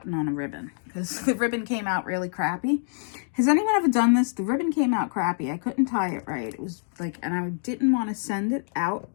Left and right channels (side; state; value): right; silent; digital silence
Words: on a ribbon because the ribbon came out really crappy. Has anyone ever done this? The ribbon came out crappy. I couldn't tie it right. It was like, and I didn't want to send it out